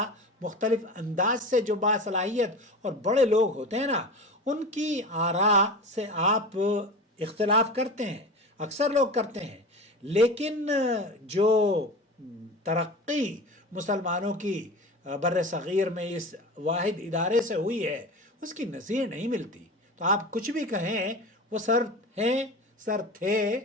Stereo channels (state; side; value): normal; both; correlation 0.31